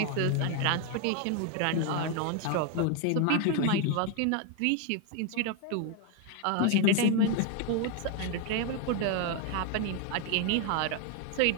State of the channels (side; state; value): both; different; correlation 0.01